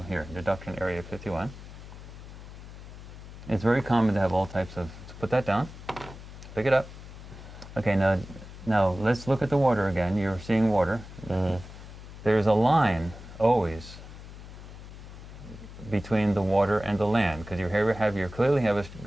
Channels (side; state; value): left; noise; hum, 14 dB below the sound